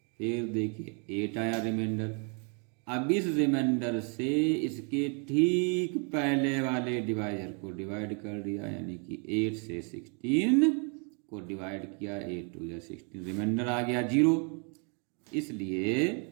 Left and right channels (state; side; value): quieter; left; 37.5 dB